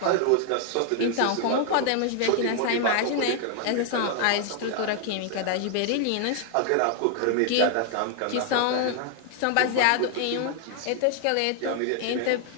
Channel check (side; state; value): both; different; correlation 0.00